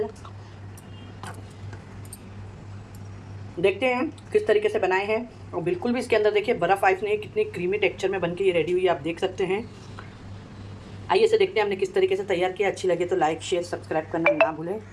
देखते हैं किस तरीके से बनाए हैं। और बिल्कुल भी इसके अंदर देखिए बर्फ़ आइस नहीं, कितनी क्रीमी टेक्सचर में बन के ये रेडी हुई है, आप देख सकते हैं। आइए इसे देखते हैं हमने किस तरीके से तैयार किया। अच्छी लगे तो लाइक शेयर सब्सक्राइब करना ना भूलें।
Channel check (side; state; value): both; identical; correlation 1.00